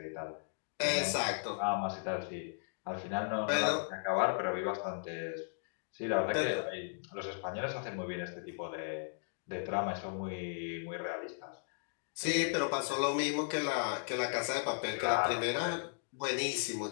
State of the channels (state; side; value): silent; right; digital silence